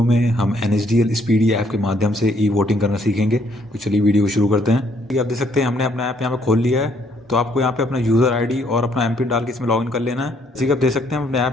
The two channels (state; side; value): normal; both; correlation 0.68